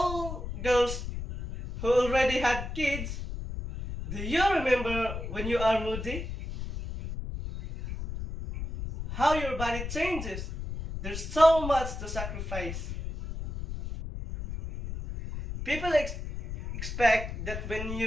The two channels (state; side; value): noise; left; rumble, 7 dB below the sound